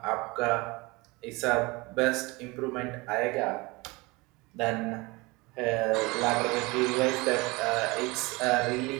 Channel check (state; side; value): quieter; left; 24.3 dB